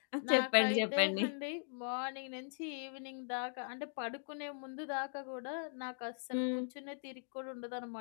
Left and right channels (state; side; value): silent; right; digital silence